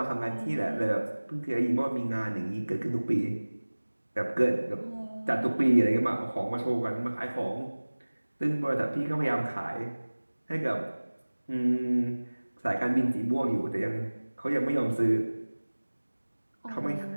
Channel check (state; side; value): inverted; both; correlation -1.00